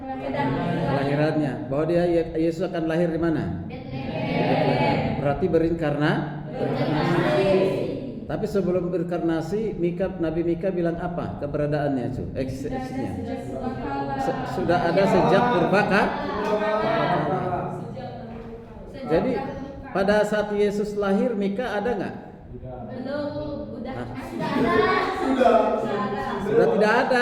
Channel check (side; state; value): both; identical; correlation 1.00